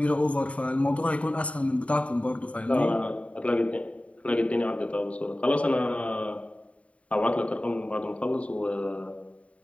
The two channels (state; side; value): late; right; 0.064 ms